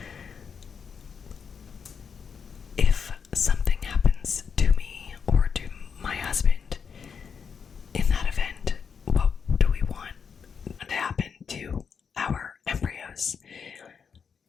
if something happens to me or to my husband in that event, what do we want to happen to our embryos?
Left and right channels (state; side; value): quieter; right; 6.4 dB